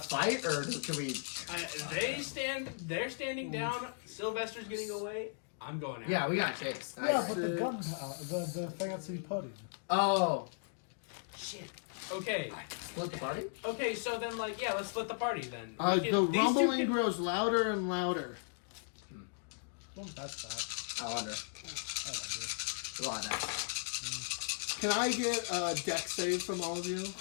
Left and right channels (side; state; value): right; silent; digital silence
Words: to fight, or can we... They're standing down. Sylvester's getting away. I'm going out. Yeah, we got chase. Yeah, Nice. but the gun, the fancy pudding. Oh. Shit. Okay. Split the party? Okay, so then, like, yeah, let's split the party then. The These two rumbling can- grows louder and louder. Well, that's that. I wonder. I wonder. A lot of that. Can I get a deck save from all of you?